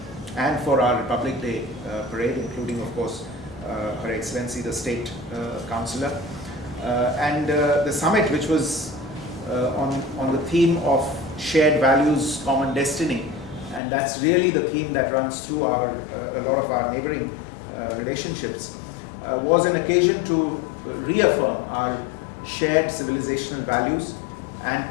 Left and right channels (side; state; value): right; drops out; at 13.8 s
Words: and for our Republic Day parade, including, of course, Her Excellency the State Councillor. And the summit, which was on the theme of shared values, common destiny, and that's really the theme that runs through a lot of our neighboring relationships, was an occasion to reaffirm our shared civilizational values and